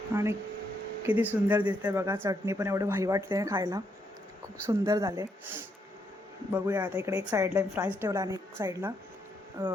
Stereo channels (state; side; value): normal; both; correlation 0.76